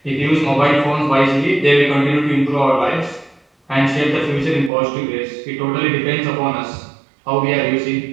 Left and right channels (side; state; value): left; drops out; at 4.7 s